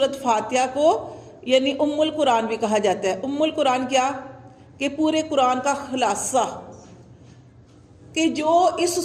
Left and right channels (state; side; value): identical; both; correlation 1.00